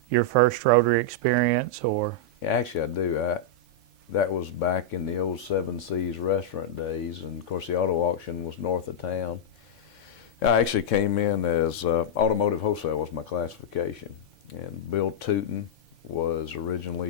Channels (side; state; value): both; normal; correlation -0.06